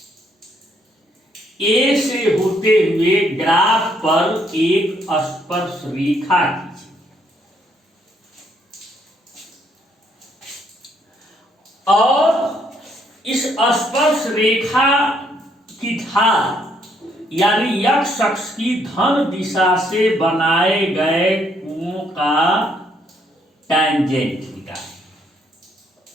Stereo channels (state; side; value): normal; both; correlation 0.70